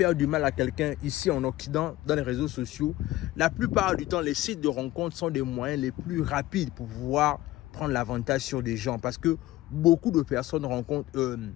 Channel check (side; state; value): right; quieter; 16.5 dB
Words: du mal à quelqu'un ici en Occident, dans les réseaux sociaux, la plupart du temps, les sites de rencontres sont des moyens les plus rapides pour pouvoir prendre l'avantage sur des gens. Parce que beaucoup de personnes